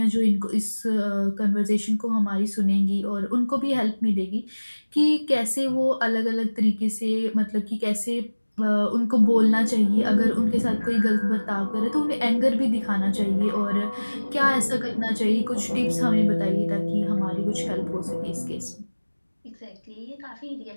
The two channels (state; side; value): inverted; both; correlation -1.00